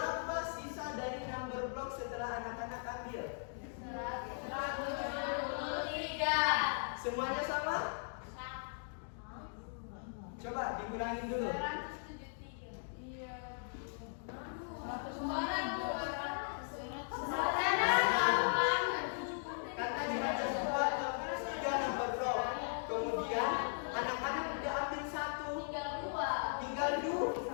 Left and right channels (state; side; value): silent; right; digital silence